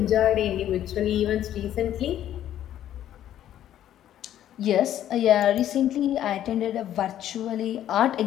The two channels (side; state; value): right; quieter; 11.6 dB